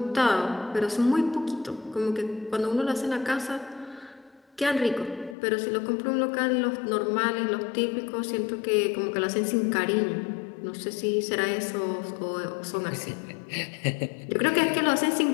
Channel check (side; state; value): right; drops out; at 5.4 s